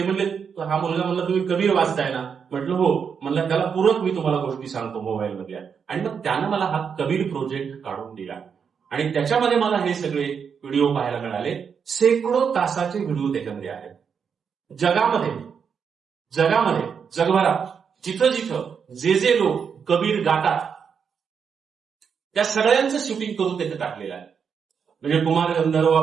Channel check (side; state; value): left; quieter; 6.6 dB